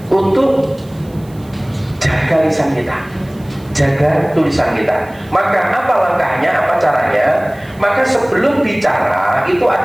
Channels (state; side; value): noise; right; hiss, 27 dB below the sound